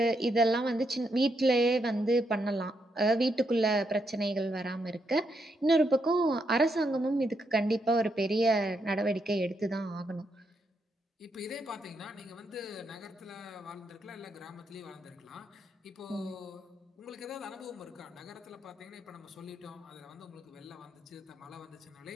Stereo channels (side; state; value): both; normal; correlation 0.79